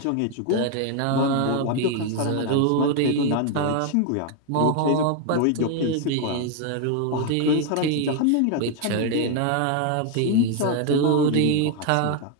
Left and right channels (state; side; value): different; both; correlation 0.01